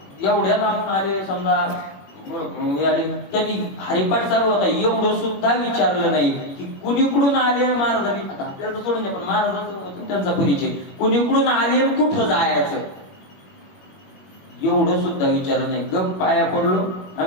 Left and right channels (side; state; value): right; late; 21 ms